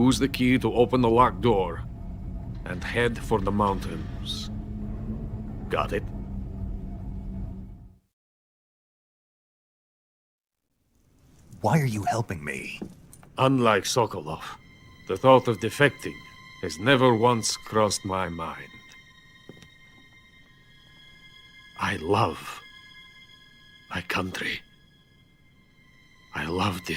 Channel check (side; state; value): both; identical; correlation 1.00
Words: the key to open the locked door and head for the mountains. Got it? Why are you helping me? Unlike Sokolov, the thought of defecting has never once crossed my mind. I love my country. I love